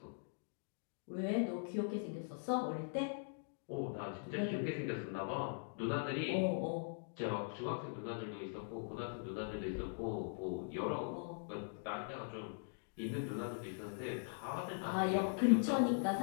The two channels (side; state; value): right; silent; digital silence